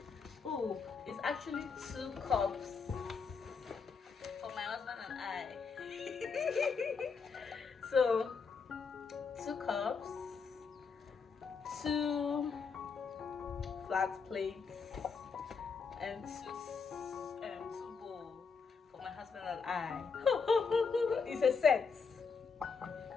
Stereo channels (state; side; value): quieter; right; 5.4 dB